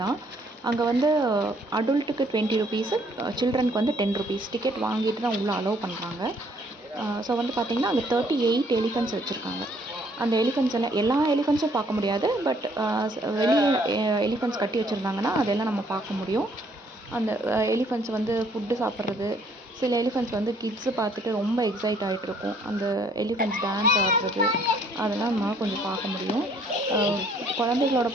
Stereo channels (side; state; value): both; normal; correlation 0.64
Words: தான். அங்கே வந்து அடல்ட்டுக்கு 20 rupees, சில்ட்ரனுக்கு வந்து 10 rupees டிக்கெட் வாங்கிட்டு தான் உள்ளே அலோவ் பண்ணுறாங்க. ஸோ வந்து பார்த்திங்கன்னா அங்கே 38 எலிஃபெண்ட்ஸ் வச்சுருக்காங்க. அந்த எலிஃபெண்ட்ஸ் எல்லாம் எல்லா எலிஃபெண்ட்ஸும் பார்க்க முடியாது. பட் வெளியே எலிஃபெண்ட்ஸ் கட்டி வச்சுருந்தாங்கன்னா அதெல்லாம் நம்ம பார்க்க முடியும். அந்த எலிஃபெண்ட்ஸ் வந்து ஃபுட்டு சாப்பிட்றது, சில எலிஃபெண்ட்ஸ் வந்து கிட்ஸு பார்த்துட்டு ரொம்ப எக்ஸைட் ஆகிட்ருக்கும். அந்த எலிஃபெண்ட்ஸ் டான்ஸ் ஆடுறது அதெல்லாம் நம்மளால் கொஞ்சம் பார்க்க முடியும். குழந்தைகளோட